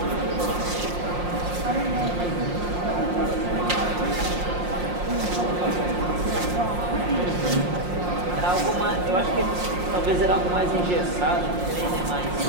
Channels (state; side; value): late; left; 5.6 ms